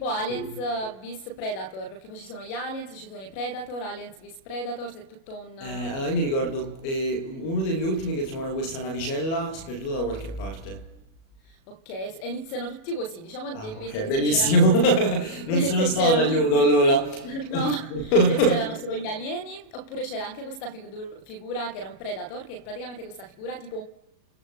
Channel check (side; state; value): right; late; 37 ms